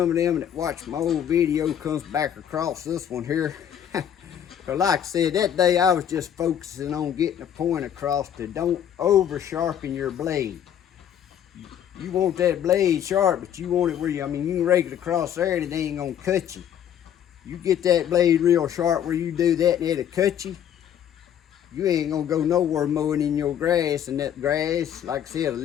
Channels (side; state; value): right; quieter; 9.7 dB